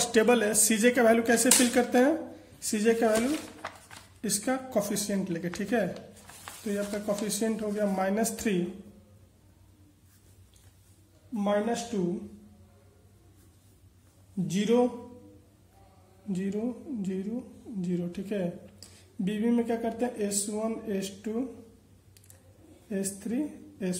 टेबल है, सीजे का वैल्यू कैसे फिल करते हैं, सीजे का वैल्यू इसका कोफिशिएंट लेके, ठीक है। तो ये आपका कोफिशिएंट हो गया -3 -2 0 0 0 0, ठीक है। बीबी में क्या करते हैं, S1 S2 S3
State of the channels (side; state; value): both; identical; correlation 1.00